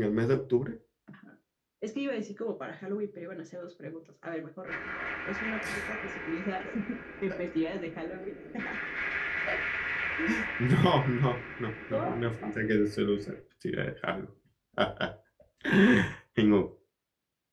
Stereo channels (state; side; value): identical; both; correlation 1.00